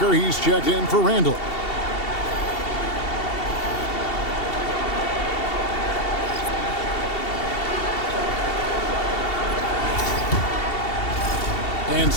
he's checked in for Randall. And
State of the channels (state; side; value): late; right; 2.7 ms